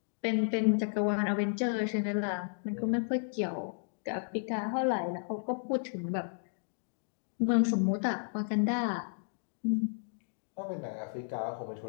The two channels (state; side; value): silent; right; digital silence